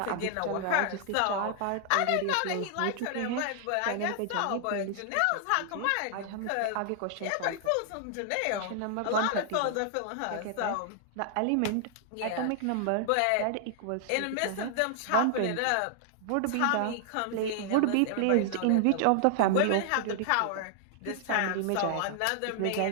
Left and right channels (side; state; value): both; different; correlation 0.00